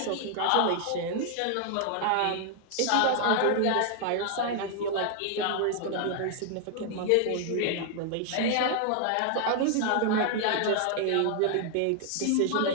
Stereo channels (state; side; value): different; both; correlation 0.00